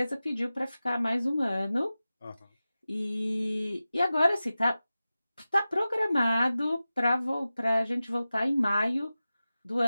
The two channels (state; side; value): inverted; both; correlation -0.95